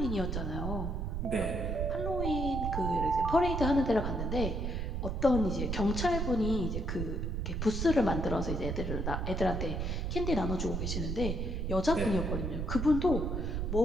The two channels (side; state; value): right; noise; rumble, 2 dB below the sound